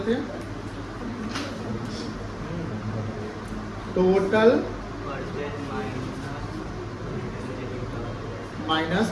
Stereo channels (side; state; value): both; identical; correlation 1.00